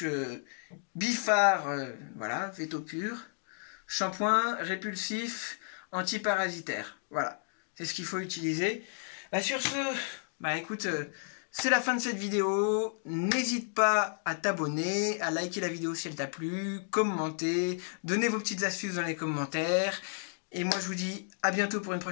Bifar, voilà, Veto Pur, shampoing répulsif, antiparasitaire. Voilà, c'est ce qu'il faut utiliser. Bah, sur ce, bah écoute, c'est la fin de cette vidéo. N'hésite pas à t'abonner, à liker la vidéo si elle t'a plu, commenter, donner vos petites astuces dans les commentaires. Et moi je vous dis à bientôt pour une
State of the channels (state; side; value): silent; right; digital silence